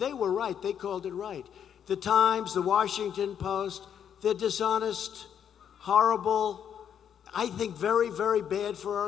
were right. They called it right. The Times, the Washington Post, they're dishonest, horrible, I think very, very bad for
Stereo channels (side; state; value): right; quieter; 8.7 dB